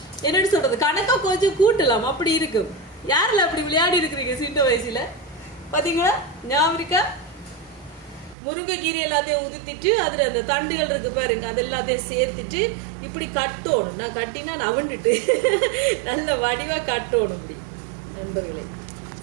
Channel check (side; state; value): left; drops out; at 8.3 s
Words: என்னன்னு சொல்றது, கணக்கா கொஞ்சம் கூட்டலாம், அப்படி இருக்கும். யாரெல்லாம் அப்படி விளையாடி இருக்கிறீங்க சின்ன வயசுல? பாத்தீங்களா ஞாபகம் இருக்கா? முருங்கைக்கீரை எல்லாத்தையும் உதித்திட்டு அதுல அந்த தண்டுகள் இருக்கு பாருங்க, அது எல்லாத்தையும் சேர்த்துட்டு இப்படி கட்டணும். நான் கட்டினா நவண்டுட்டு நல்ல வடிவா கட்டணும் இப்படி நண்பர்களே,